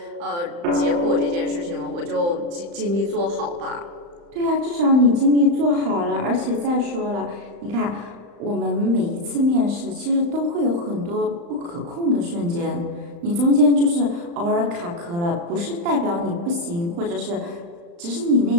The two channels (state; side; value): late; left; 35 ms